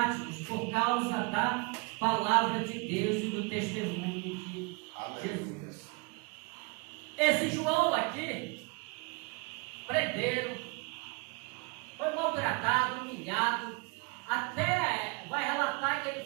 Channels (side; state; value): left; quieter; 29.8 dB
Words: por causa da palavra de Deus e do testemunho de Jesus. Esse João aqui, prenderam, foi maltratado, humilhado, até vai relatar que ele